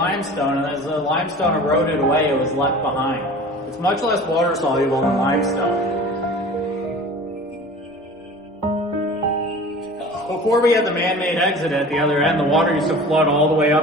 and as the limestone eroded away, it was left behind. It's much less water soluble than limestone. Before we had the man-made exit at the other end, the water used to flood all the way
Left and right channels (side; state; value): both; normal; correlation 0.41